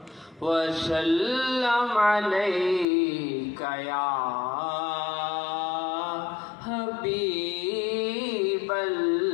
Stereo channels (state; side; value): drops out; right; at 2.9 s